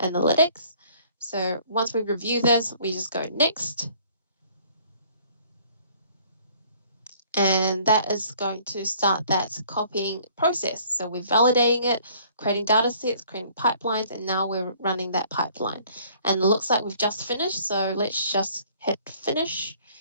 So once we review this, we just go next. And that is going to start that copying process. So we're validating it, creating data sets, creating pipelines, and now we're running that pipeline. And it looks like we've just finished. So let's just hit finish.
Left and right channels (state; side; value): inverted; both; correlation -0.57